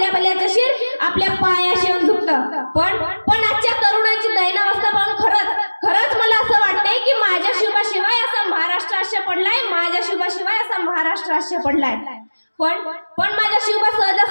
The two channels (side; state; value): both; inverted; correlation -1.00